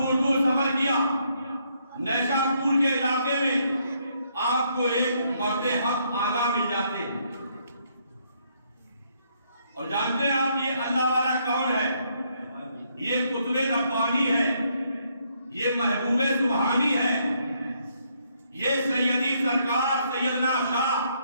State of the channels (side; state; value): both; inverted; correlation -0.72